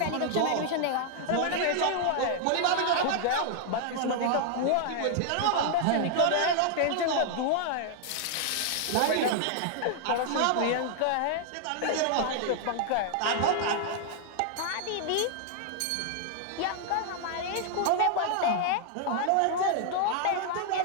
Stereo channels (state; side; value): different; both; correlation 0.00